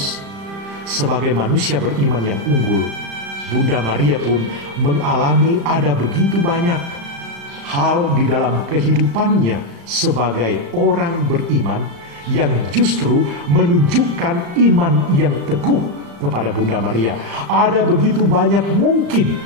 sebagai manusia beriman yang unggul, Bunda Maria pun mengalami ada begitu banyak hal di dalam kehidupannya sebagai orang beriman yang justru menunjukkan iman yang teguh kepada Bunda Maria. Ada begitu banyak mungkin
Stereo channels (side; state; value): left; late; 35 ms